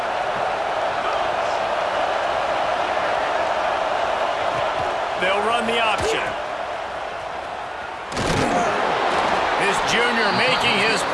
They'll run the option. This junior making his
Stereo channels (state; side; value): identical; both; correlation 1.00